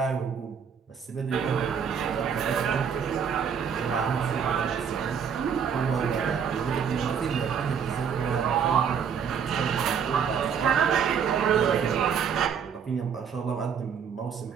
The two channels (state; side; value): quieter; left; 7.2 dB